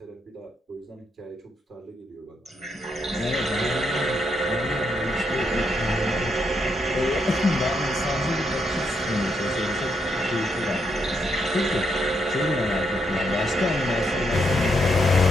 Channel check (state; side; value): normal; both; correlation 0.78